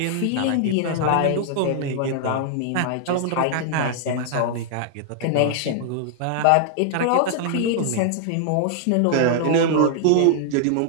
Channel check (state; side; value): different; both; correlation 0.00